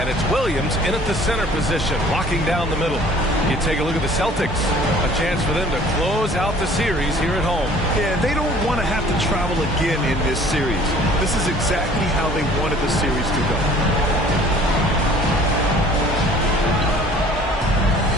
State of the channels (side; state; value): both; normal; correlation 0.52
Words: it's Williams in at the center position, locking down the middle. You take a look at the Celtics. A chance for them to close out the series here at home. Yeah, they don't want to have to travel again in this series. This is exactly how they wanted the series to go.